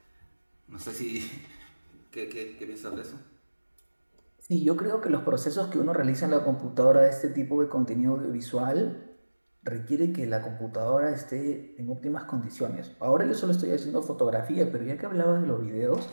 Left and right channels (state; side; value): inverted; both; correlation -1.00